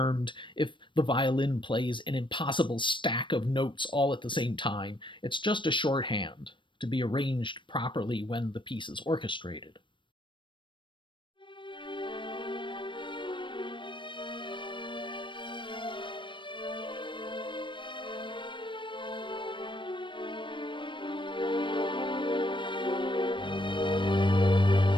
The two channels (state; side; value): late; right; 0.24 ms